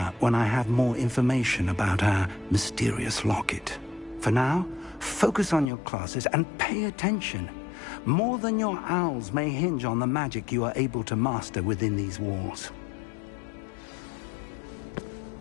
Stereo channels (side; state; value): right; drops out; at 5.7 s